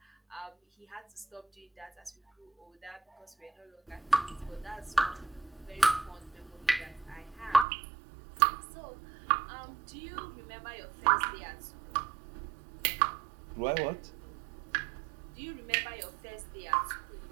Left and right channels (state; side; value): drops out; left; at 7.7 s